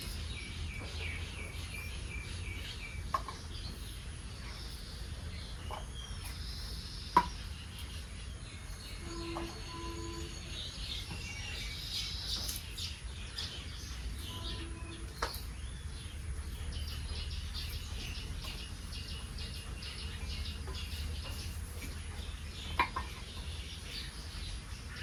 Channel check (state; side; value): identical; both; correlation 1.00